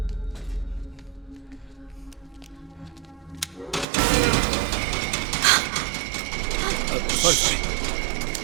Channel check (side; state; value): left; drops out; at 3.9 s